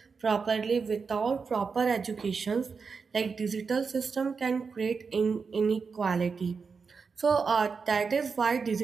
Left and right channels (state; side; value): quieter; left; 5.2 dB